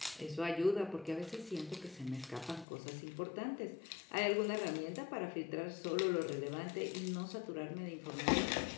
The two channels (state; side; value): drops out; right; at 2.7 s